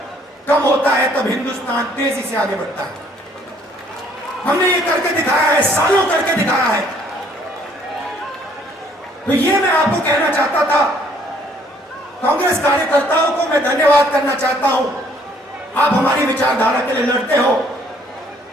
कम होता है, तब हिंदुस्तान तेजी से आगे बढ़ता है। हमने ये करके दिखाया है, सालों करके दिखाया है। तो ये मैं आपको कहना चाहता था। कांग्रेस कार्यकर्ताओं को मैं धन्यवाद करना चाहता हूं। आप हमारी विचारधारा के लिए लड़ते हो,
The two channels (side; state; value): both; normal; correlation 0.63